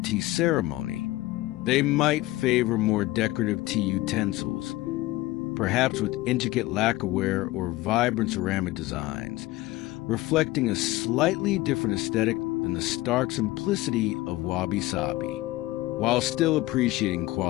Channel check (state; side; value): quieter; right; 18.2 dB